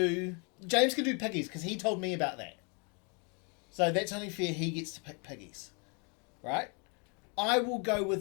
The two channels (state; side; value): quieter; right; 34.8 dB